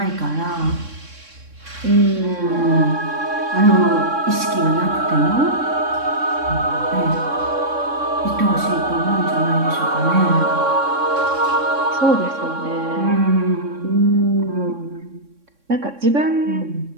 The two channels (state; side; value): late; left; 3.6 ms